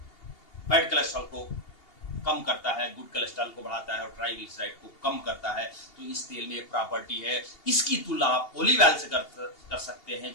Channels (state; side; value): late; right; 2.8 ms